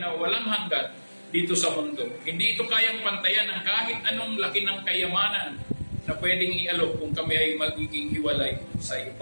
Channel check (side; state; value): both; inverted; correlation -1.00